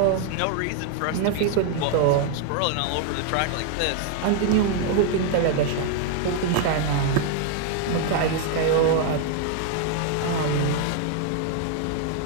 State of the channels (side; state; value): both; different; correlation 0.00